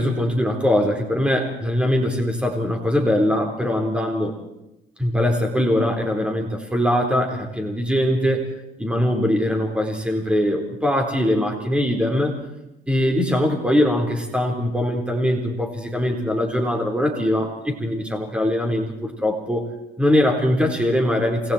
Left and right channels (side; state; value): both; normal; correlation 0.81